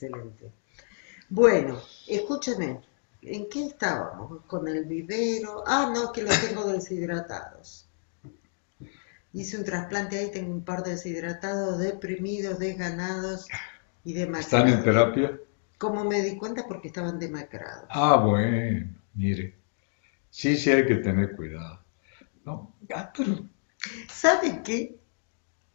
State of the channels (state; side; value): silent; right; digital silence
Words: Bueno, escúchame, ¿en qué estábamos? ¿Con el vivero? Ah, no, que los tengo deshidratados. Hice un trasplante ahí, tengo un par de deshidratados, deprimidos, desganados y ¿Están en demacrados. terapia? ¿Cómo me di cuenta? Porque estaban demacrados. Bueno, mire. Sí, hay que tener cuidado. No, pero ¿Sabe qué?